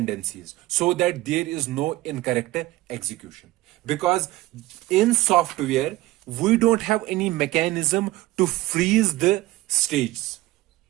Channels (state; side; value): quieter; left; 17.7 dB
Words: so that there is no incorrect execution. Because in software, we don't have any mechanism to freeze the stages.